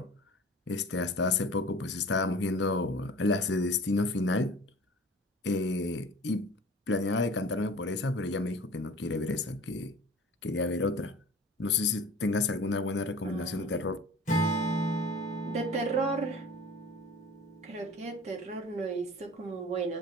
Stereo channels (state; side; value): normal; both; correlation 0.42